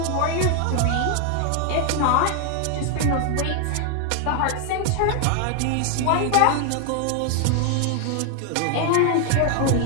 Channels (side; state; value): both; different; correlation 0.00